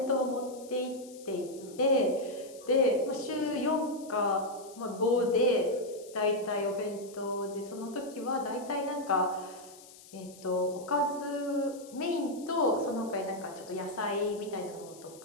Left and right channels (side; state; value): left; noise; hiss, 20 dB below the sound